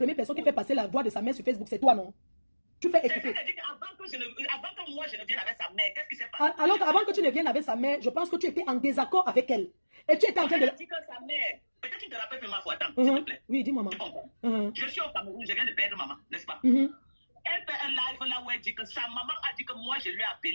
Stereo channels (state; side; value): inverted; both; correlation -1.00